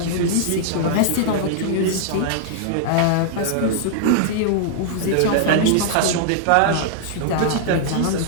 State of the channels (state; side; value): different; both; correlation -0.01